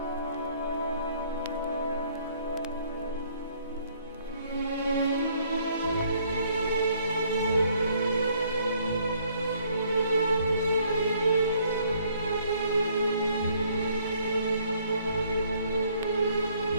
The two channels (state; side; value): inverted; both; correlation -0.64